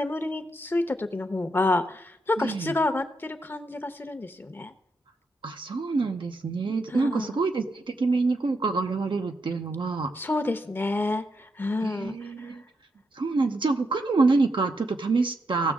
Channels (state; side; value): normal; both; correlation 0.81